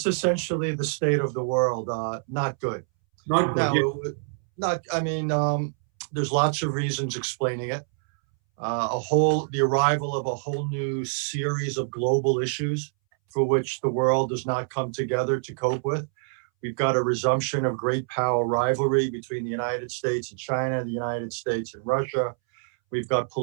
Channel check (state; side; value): silent; left; 61 dB below the other